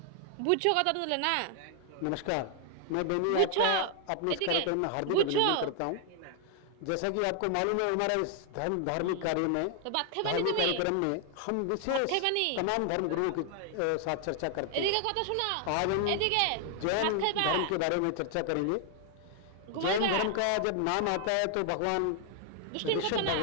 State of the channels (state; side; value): different; both; correlation 0.00